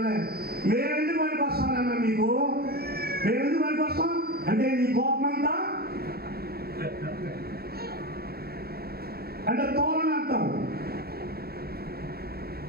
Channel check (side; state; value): left; late; 0.45 ms